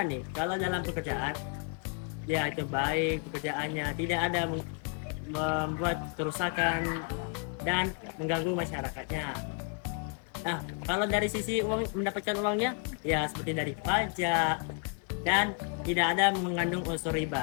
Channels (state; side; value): quieter; right; 38.3 dB